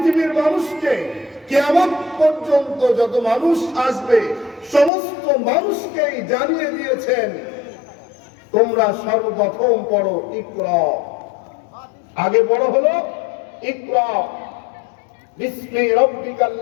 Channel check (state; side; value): drops out; right; at 4.9 s